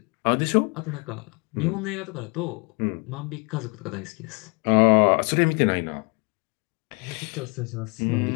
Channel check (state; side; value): quieter; right; 32.1 dB